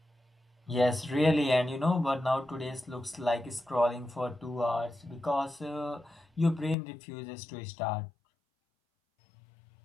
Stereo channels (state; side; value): drops out; right; at 6.8 s